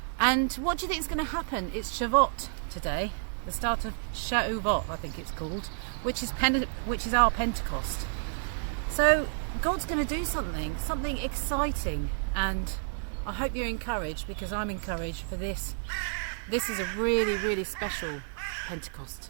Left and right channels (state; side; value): silent; left; 58 dB below the other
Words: what do you think is going to happen? It's Shavuot today, the start of Shavuot, I think it's called, which is our Pentecost. So God's going to do something exciting, and I hope you're encouraged, because I'm encouraged for this. This is a really, really special